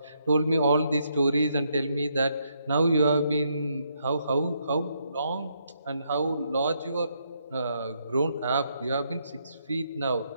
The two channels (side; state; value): both; inverted; correlation -0.76